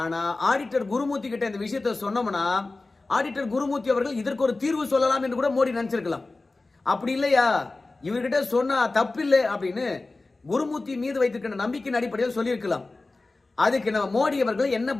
ஆடிட்டர் குருமூர்த்தி கிட்ட இந்த விஷயத்த சொன்னோம்னா ஆடிட்டர் குருமூர்த்தி அவர்கள் இதற்கு ஒரு தீர்வு சொல்லலாம் என்று கூட மோடி நினைச்சிருக்கலாம். அப்படி இல்லையா, இவர்கிட்ட சொன்னா தப்பில்லை அப்படின்னு குருமூர்த்தி மீது வைத்திருக்கிற நம்பிக்கையின் அடிப்படையில் சொல்லியிருக்கலாம். அதுக்கு நம்ம மோடி அவர்கள் என்ன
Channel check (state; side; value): quieter; right; 3.3 dB